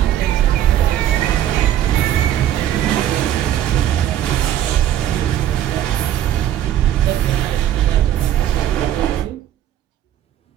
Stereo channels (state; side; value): quieter; left; 11.5 dB